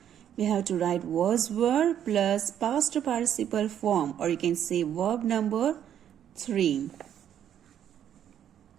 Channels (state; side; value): quieter; left; 9.9 dB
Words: We have to write was, were plus past participle form, or you can say verb number 3.